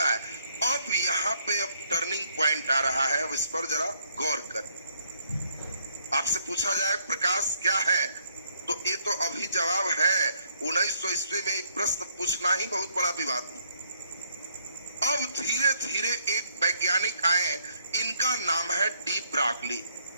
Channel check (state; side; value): inverted; both; correlation -0.70